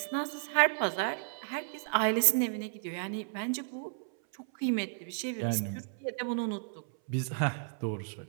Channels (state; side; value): silent; left; 56 dB below the other